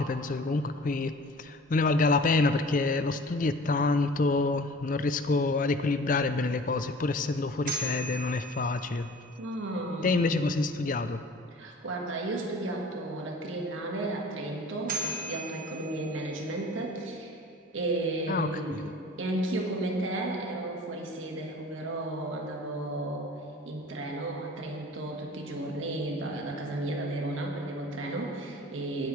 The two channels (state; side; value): normal; both; correlation 0.44